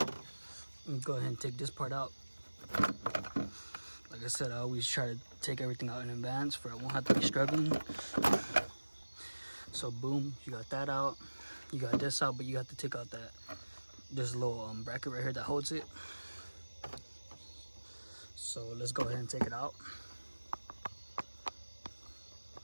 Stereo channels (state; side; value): inverted; both; correlation -1.00